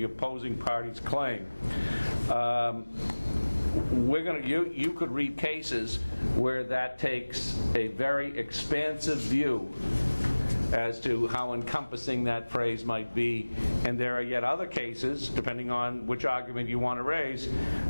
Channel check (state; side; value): inverted; both; correlation -1.00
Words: opposing party's claim. You could read cases where that takes a very expansive view as to how encompassing that phrase might be. And there are yet other cases, depending on which argument you want to raise,